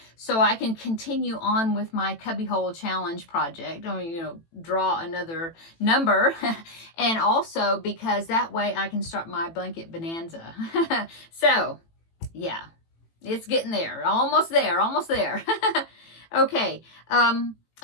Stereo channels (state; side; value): late; right; 18 ms